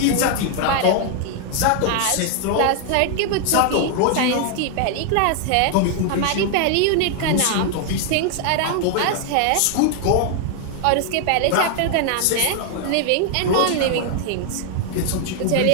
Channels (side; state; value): both; different; correlation 0.00